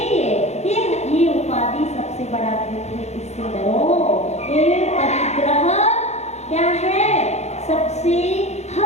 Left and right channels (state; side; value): late; right; 0.32 ms